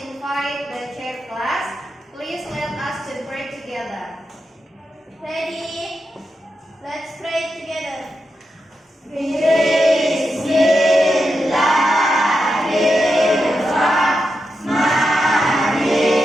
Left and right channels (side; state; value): both; normal; correlation 0.87